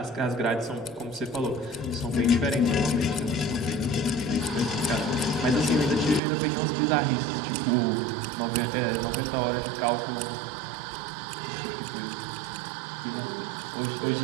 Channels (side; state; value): left; drops out; at 6.2 s